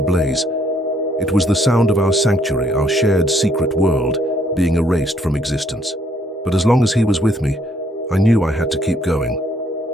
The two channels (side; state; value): both; normal; correlation 0.67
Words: blaze. It was the sound of our sanctuary, our shared secret world, being erased from existence. But as long as he was with me, I knew I had to keep going.